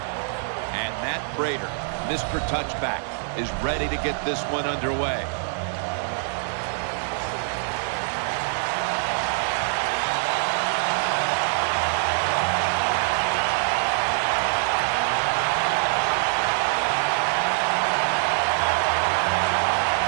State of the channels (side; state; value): left; silent; 62 dB below the other